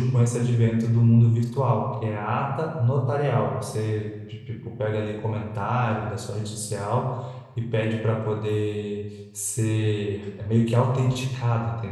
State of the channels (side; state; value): both; identical; correlation 1.00